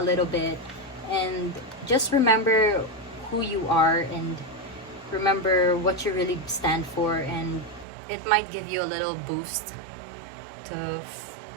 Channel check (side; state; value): left; drops out; at 7.9 s